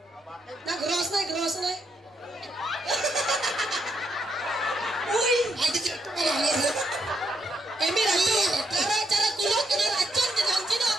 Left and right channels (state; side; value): normal; both; correlation 0.77